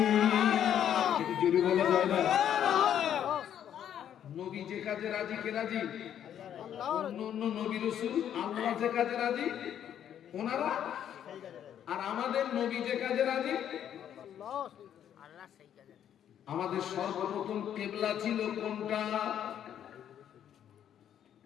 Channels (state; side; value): quieter; right; 9.9 dB